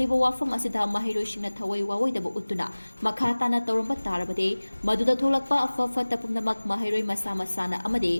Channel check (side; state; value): both; inverted; correlation -1.00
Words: Wafom Asida Maheiroi Singna Thawai Wawai Dabu Utuna Makhatana Toramba Tarabade, Maduda Tolakpa of Fata Punamak Maheiroi Masama Sana